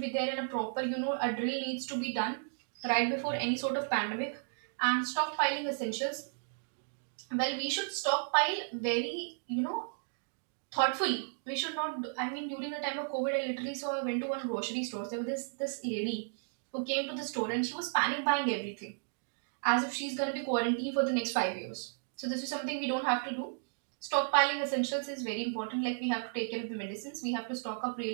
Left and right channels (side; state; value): left; silent; digital silence